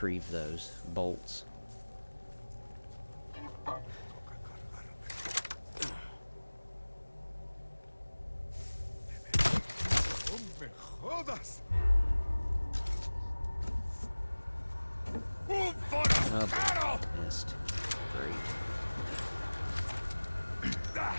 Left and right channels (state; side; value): inverted; both; correlation -1.00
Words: those bolts. Oh, missed. Great.